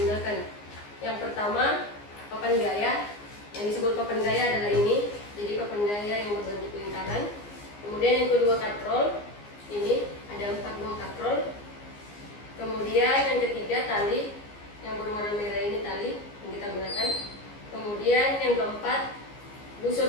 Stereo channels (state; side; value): late; right; 15 ms